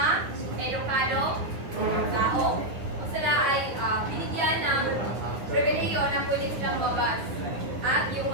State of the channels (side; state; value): left; late; 9.3 ms